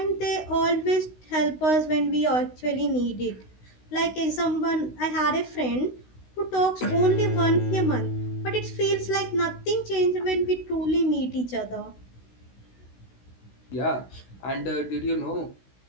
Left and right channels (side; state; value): right; late; 16 ms